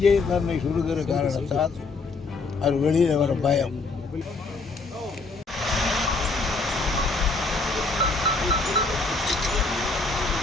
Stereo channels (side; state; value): right; quieter; 3.8 dB